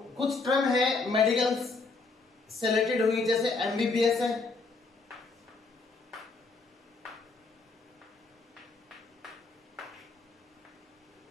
कुछ टर्म है मेडिकल से रिलेटेड हुई, जैसे एमबीबीएस है,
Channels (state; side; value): quieter; right; 3.9 dB